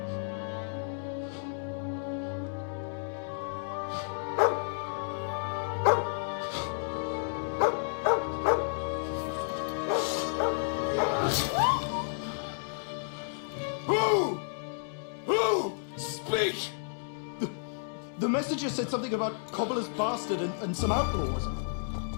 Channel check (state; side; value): silent; right; 57 dB below the other